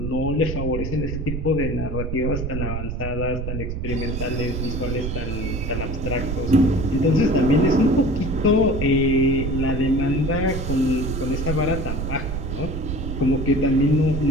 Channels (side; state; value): right; noise; rumble, 4 dB below the sound